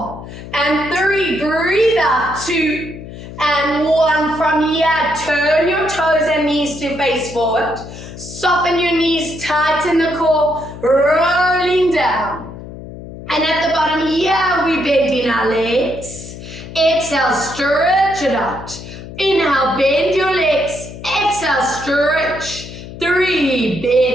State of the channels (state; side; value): noise; left; hum, 13 dB below the sound